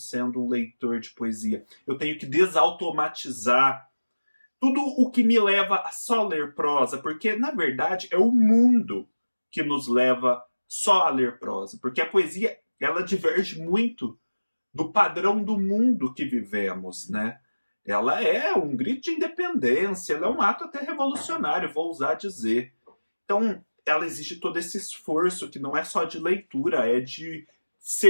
um leitor de poesia. Eu tenho que desautomatizar tudo o que me leva a só ler prosa, porque, na verdade, é o mundo que nos leva só a ler prosa. Porque a poesia, ela diverge muito do padrão do mundo que vivemos, né? Ela é um grito de independência, ela é um ato até revolucionário, vou ousar dizer. Então, ela exige todo esse esforço que não é só de leitura, é de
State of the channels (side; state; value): both; inverted; correlation -1.00